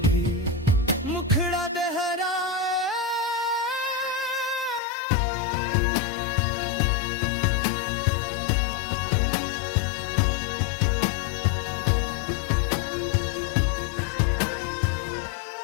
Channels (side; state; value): right; drops out; at 4.8 s